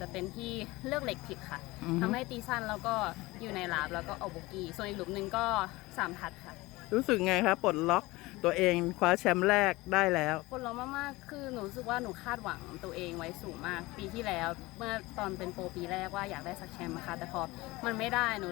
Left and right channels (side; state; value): right; quieter; 20.9 dB